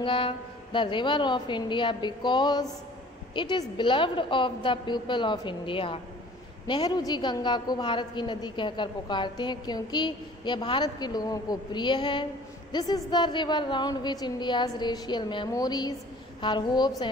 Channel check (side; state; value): both; normal; correlation 0.49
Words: the river of India because it is beloved of the people of India. Nehru ji Ganga को भारत की नदी कहकर पुकारते हैं क्योंकि यह भारत के लोगों को प्रिय है। This is the river round which India's racial memories her hopes